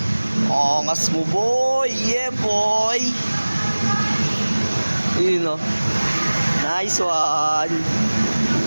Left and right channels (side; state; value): both; inverted; correlation -1.00